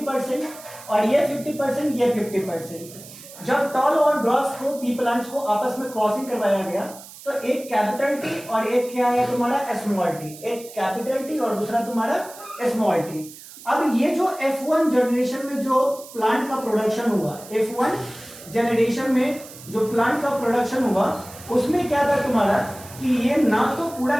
और ये 50%, ये 50%। जब टॉल और ड्वार्फ को पी प्लांट्स को आपस में क्रॉसिंग करवाया गया तो एक कैपिटल टी और एक क्या है तुम्हारा स्मॉल टी, एक कैपिटल टी और दूसरा तुम्हारा स्मॉल टी। अब ये जो F1 जनरेशन में जो प्लांट का प्रोडक्शन हुआ, F1 जनरेशन में जो प्लांट का प्रोडक्शन हुआ उसमें क्या था तुम्हारा कि ये ना तो पूरा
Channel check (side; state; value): right; noise; hiss, 17 dB below the sound